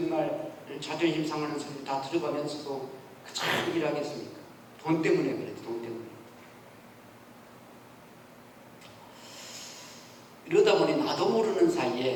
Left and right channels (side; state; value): both; identical; correlation 1.00